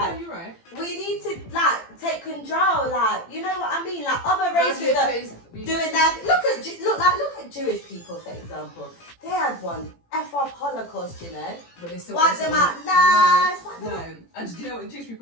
you're right. We need to, like, take control, like, you know what I mean? Like, other races are doing that. Look at Jewish people, for example. They had one F-off Holocaust, you know? But they still wipe them out. No. And do you know what the Jewish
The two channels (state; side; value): late; right; 18 ms